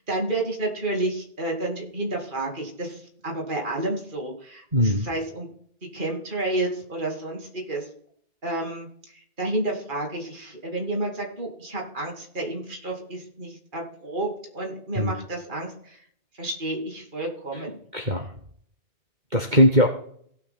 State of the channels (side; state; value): left; late; 2.2 ms